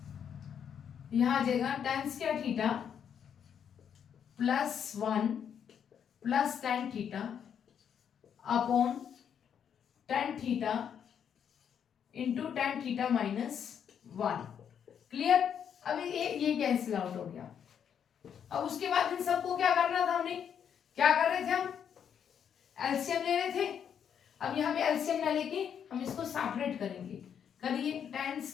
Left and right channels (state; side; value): quieter; right; 8.2 dB